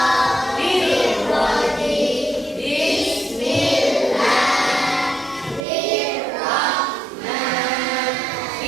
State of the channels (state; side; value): drops out; left; at 5.7 s